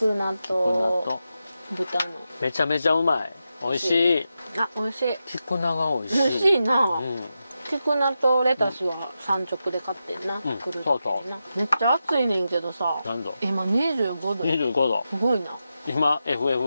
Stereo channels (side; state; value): both; inverted; correlation -0.89